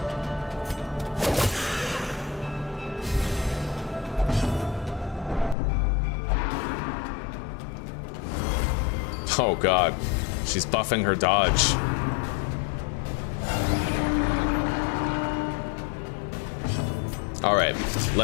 Oh god. She's buffing her dodge. Alright,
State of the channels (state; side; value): drops out; right; at 5.6 s